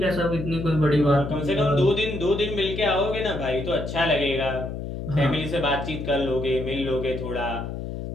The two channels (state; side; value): noise; left; hum, 6 dB below the sound